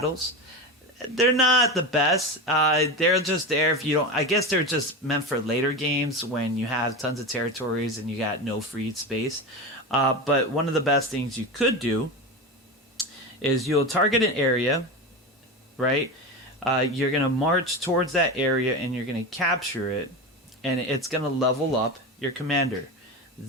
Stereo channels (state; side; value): normal; both; correlation 0.22